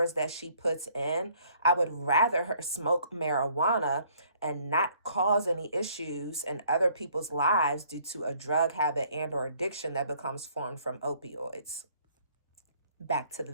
that she puts in. I would rather her smoke marijuana and not cause any issues in other people's lives due to a drug habit and or addiction that becomes formed from opioids. Back to the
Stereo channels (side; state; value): both; inverted; correlation -0.61